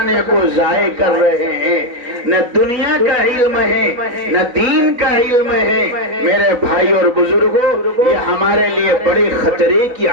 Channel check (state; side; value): late; left; 4.0 ms